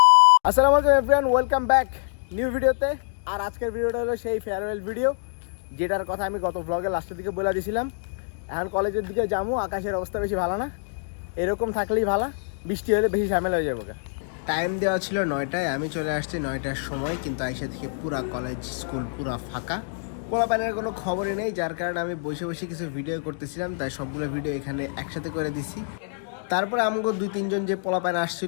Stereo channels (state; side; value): silent; right; digital silence